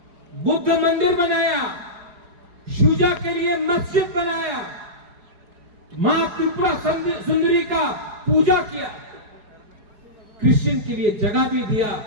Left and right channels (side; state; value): left; late; 4.8 ms